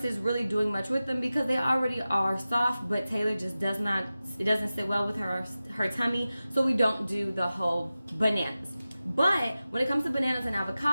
really doing much with them because they already are soft, but Taylor just does not, it doesn't sit well with her tummy, so we don't do the whole bananas. But when it comes to bananas and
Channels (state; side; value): inverted; both; correlation -0.95